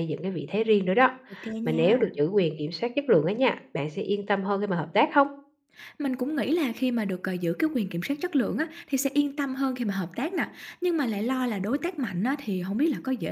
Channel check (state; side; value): identical; both; correlation 1.00